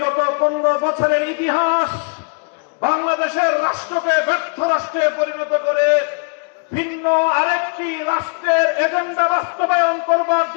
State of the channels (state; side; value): quieter; right; 39.5 dB